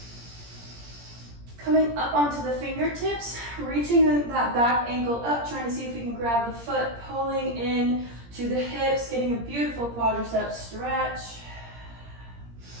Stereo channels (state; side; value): late; left; 17 ms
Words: Coming up onto the fingertips, reaching that back ankle up, trying to see if we can grab the foot, pulling in to the hips, getting a beautiful quadricep stretch.